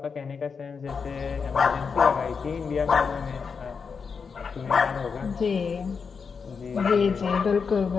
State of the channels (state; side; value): quieter; right; 5.6 dB